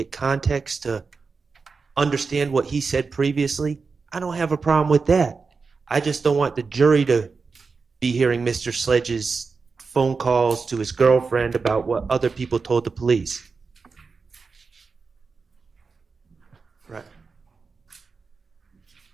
context to understand what he said previously, I don't have a problem with that. I just don't want the jury to be hearing Mr. Sledge's phone calls to his girlfriend about what other people told the police. Right.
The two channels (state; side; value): quieter; left; 4.7 dB